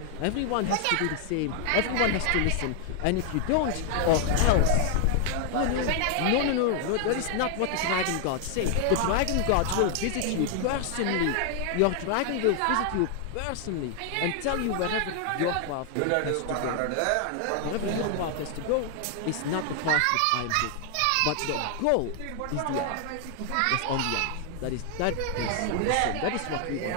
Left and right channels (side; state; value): both; different; correlation 0.00